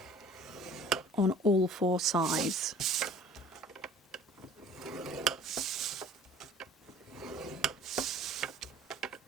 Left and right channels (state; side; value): normal; both; correlation 0.48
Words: on all 4 sides.